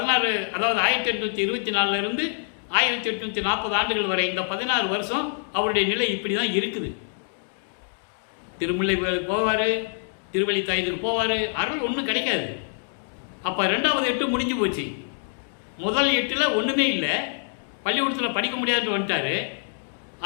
அதாவது 1824 1840 ஆண்டுகள் வரை இந்த 16 வருஷம் அவருடைய நிலை இப்படி தான் இருக்குது. திருமுல்லை போவார், திருவள்ளித்தாயத்துக்கு போவார், அருள் ஒன்றும் கிடைக்காது. அப்போ 2வது 8 முடிஞ்சு போச்சு. முதல் 8ல் ஒன்றுமே இல்லை, பள்ளிக்கூடத்தில் படிக்க முடியாதுன்னு வந்துட்டார்,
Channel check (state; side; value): silent; right; digital silence